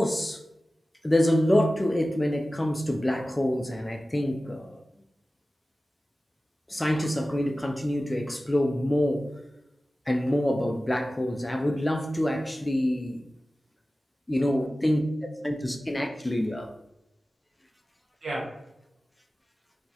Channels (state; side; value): normal; both; correlation 0.96